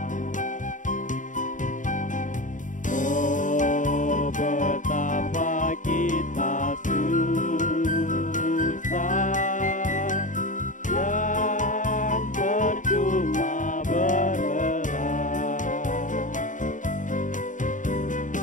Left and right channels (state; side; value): late; right; 0.37 ms